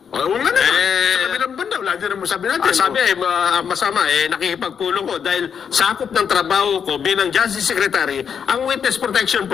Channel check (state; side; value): quieter; right; 7.3 dB